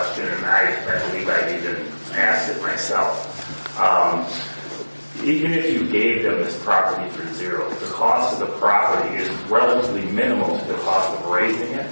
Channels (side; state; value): both; inverted; correlation -1.00